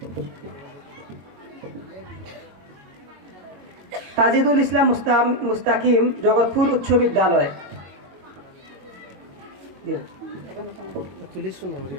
তাজিদুল ইসলাম মুস্তাকিম, জগৎপুর উচ্চ বিদ্যালয়। তুলিস শুনো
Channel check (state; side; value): late; left; 22 ms